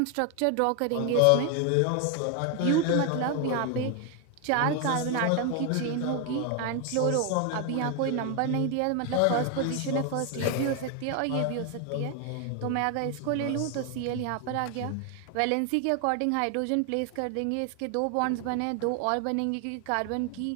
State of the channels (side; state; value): both; different; correlation 0.01